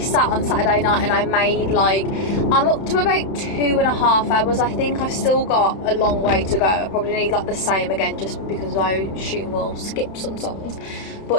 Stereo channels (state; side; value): late; right; 32 ms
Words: on Saturday night and I made like, I'm up to about 2.5 hours. I think I've still got a long way to go. I probably need like the same again, just because I assume we'll skip some songs.